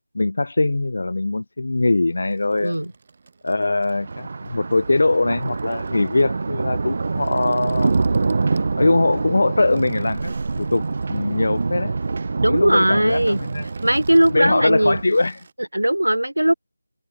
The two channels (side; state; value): both; inverted; correlation -0.97